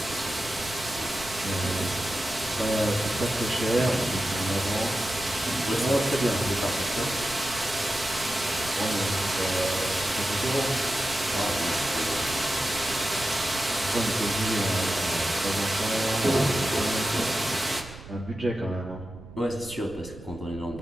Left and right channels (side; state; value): right; noise; rumble, 16 dB below the sound